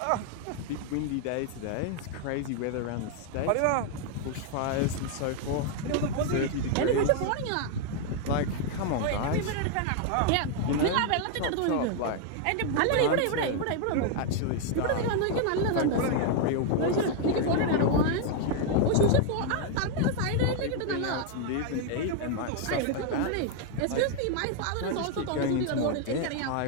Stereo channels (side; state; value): both; different; correlation 0.00